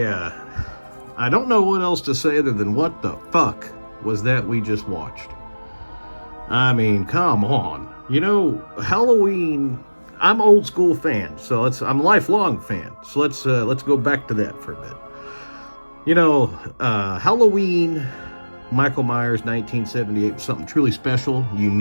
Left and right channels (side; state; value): both; inverted; correlation -1.00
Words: don't know what else to say other than what the fuck was that we just watched. I mean, come on. Halloween. I'm old school fan, so I'm a lifelong fan. So let's go back to that for a bit. Halloween, Michael Myers, 1978 was something truly special,